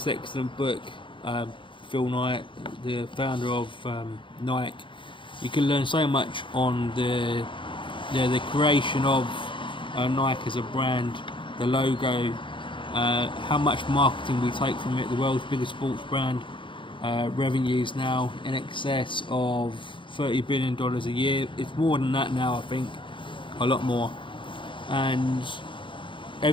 excellent book. Phil Knight, the founder of Nike. You can learn so much on the creation of Nike as a brand, the logo, how much marketing we take from it. The world's biggest sports brand, revenues now in excess of $30 billion a year. It's more than that now, I think, a lot more. And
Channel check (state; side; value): late; right; 0.24 ms